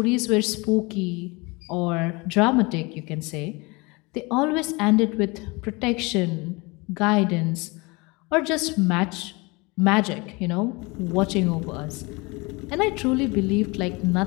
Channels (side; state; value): right; quieter; 26.1 dB